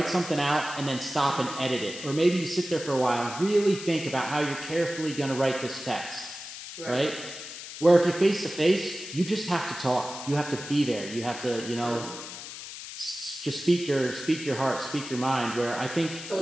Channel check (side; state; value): left; noise; hiss, 11 dB below the sound